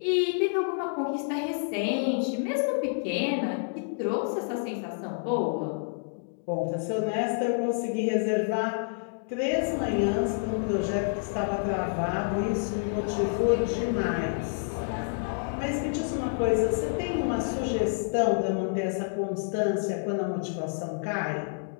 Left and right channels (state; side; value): silent; right; digital silence